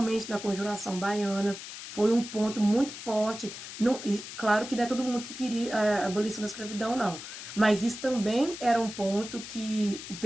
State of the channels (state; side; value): noise; left; hiss, 11 dB below the sound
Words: na Conjuração Baiana, foi um ponto muito forte. Não, claro que não é todo mundo que queria a abolição da escravidão, não. Mas isso também era um ponto que